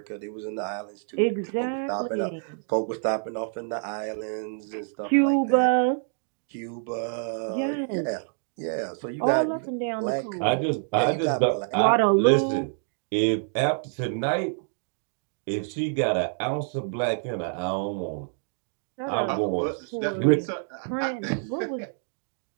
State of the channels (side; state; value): left; silent; 60 dB below the other